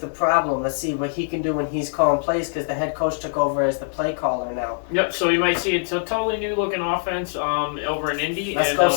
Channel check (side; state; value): right; silent; digital silence